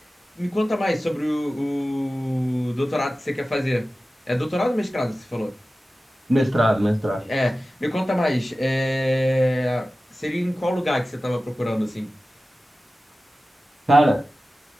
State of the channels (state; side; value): normal; both; correlation 0.95